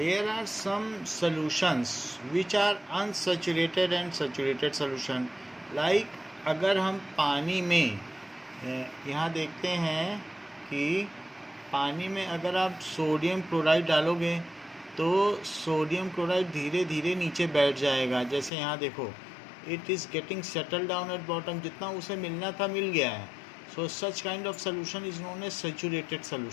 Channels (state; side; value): drops out; right; at 18.5 s